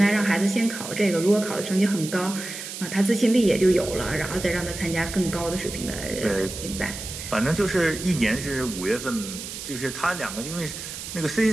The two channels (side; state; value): right; noise; hiss, 9 dB below the sound